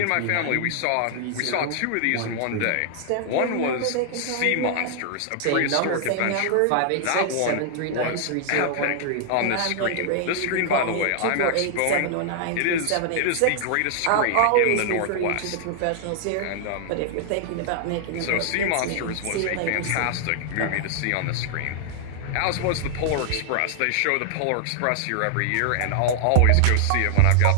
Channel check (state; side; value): different; both; correlation 0.00